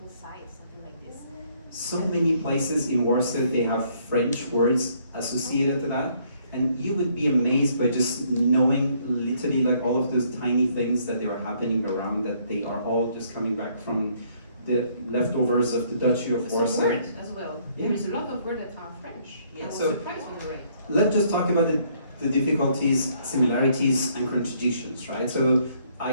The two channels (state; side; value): inverted; both; correlation -0.66